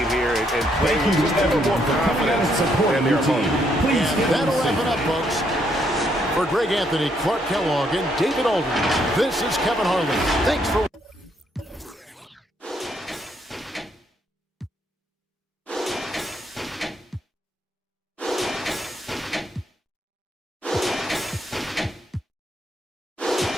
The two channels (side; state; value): both; normal; correlation 0.73